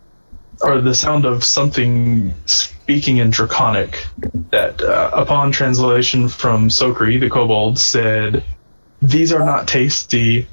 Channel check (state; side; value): inverted; both; correlation -1.00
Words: or the sound of something speaking in Draconic, that upon translation from Sokri, the kobold, said, "These are not tasty,